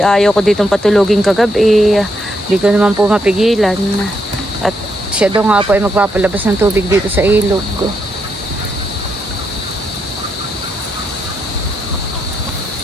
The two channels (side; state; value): both; normal; correlation 0.79